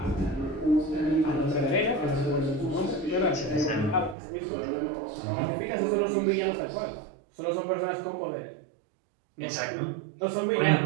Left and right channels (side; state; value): left; drops out; at 4.2 s